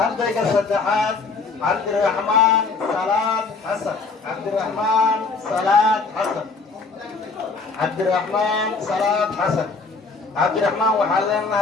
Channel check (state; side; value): quieter; right; 4.3 dB